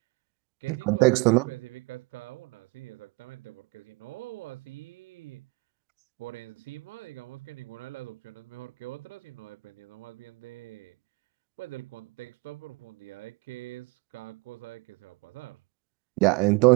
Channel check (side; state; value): left; quieter; 27.4 dB